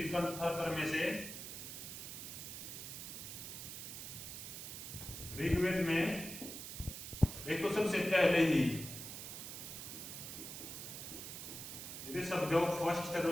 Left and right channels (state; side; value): noise; right; hiss, 8 dB below the sound